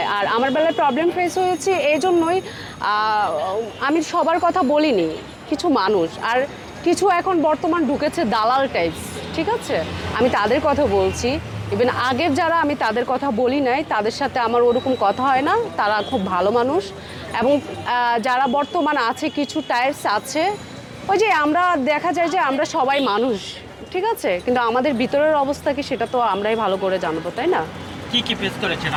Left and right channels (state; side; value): identical; both; correlation 1.00